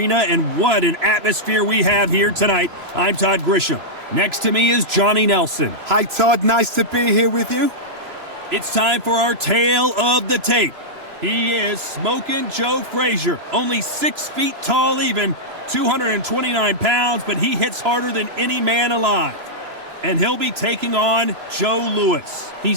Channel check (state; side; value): late; left; 3.0 ms